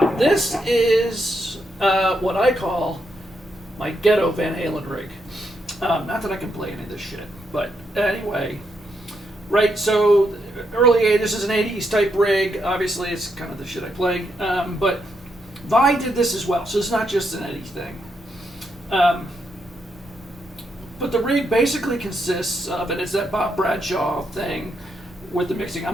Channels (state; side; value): normal; both; correlation 0.80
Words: This is what I call my ghetto Van Halen rig. Not that I can play any of this shit, but anyway. Right, so this is an 80s type rig. Obviously, it's kind of the shit I play, but Vi did this as well, so it's not just an Eddie thing. But the rig basically consists of, and it's that Bob Bradshaw thing with the mixing.